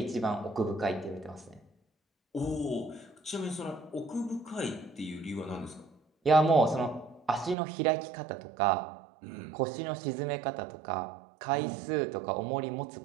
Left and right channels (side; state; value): left; drops out; at 7.6 s